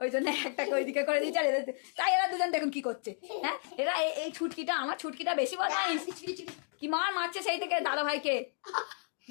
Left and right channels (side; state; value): right; silent; 56 dB below the other